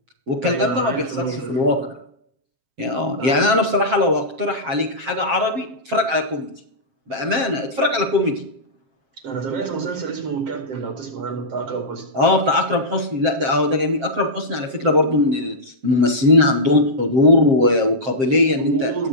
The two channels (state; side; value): late; left; 7.5 ms